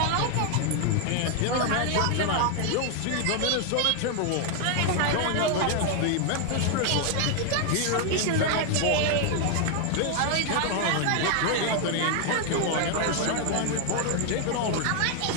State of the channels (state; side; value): different; both; correlation 0.00